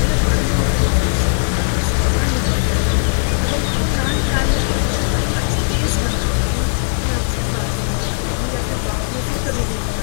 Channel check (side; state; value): right; silent; digital silence